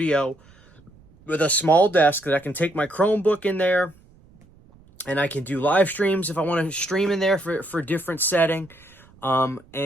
with a small desk that I can take my Chromebook in there, and I can do live streams if I want to stream in there for different setting.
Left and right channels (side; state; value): right; noise; rumble, 27 dB below the sound